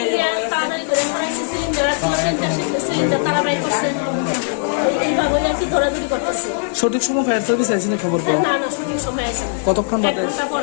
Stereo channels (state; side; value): silent; right; digital silence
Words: তাড়াতাড়ি করে মনে হচ্ছে সিলিন্ডার আছে, সিলিন্ডার তাড়াতাড়ি করছে, এইভাবে আর কি ধরাধরি করতেছে। সঠিক সময় ফায়ার সার্ভিস আইসিনি খবর পাও? না না, সঠিক সময় আছে না। কতক্ষণ বাদে? 1 ঘন্টা পর